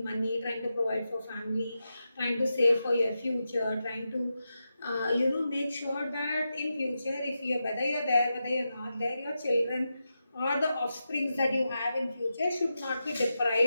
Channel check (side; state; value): both; inverted; correlation -0.89